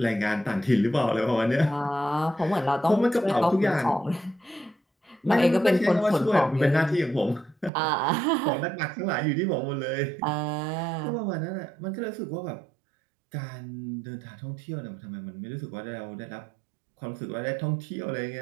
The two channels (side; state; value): left; drops out; at 7.7 s